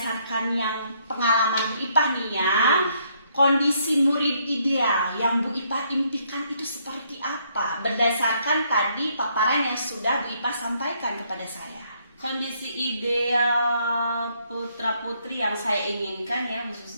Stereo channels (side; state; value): both; inverted; correlation -0.70